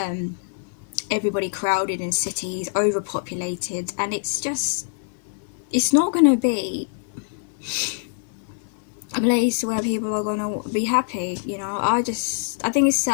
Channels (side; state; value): right; silent; 62 dB below the other